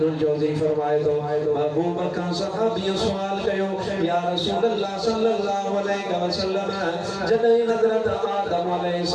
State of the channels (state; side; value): identical; both; correlation 1.00